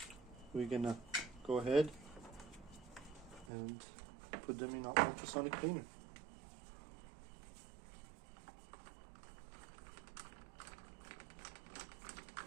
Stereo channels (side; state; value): left; drops out; at 3.5 s